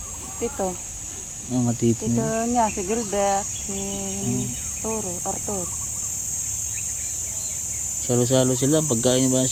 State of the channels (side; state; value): both; identical; correlation 1.00